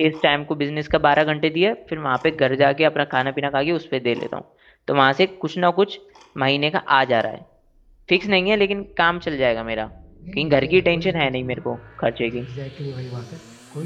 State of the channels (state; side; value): identical; both; correlation 1.00